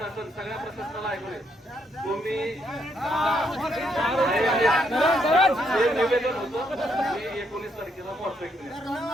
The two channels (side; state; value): both; normal; correlation 0.75